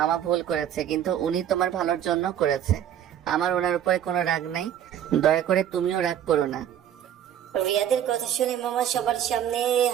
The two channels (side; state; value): left; quieter; 10.2 dB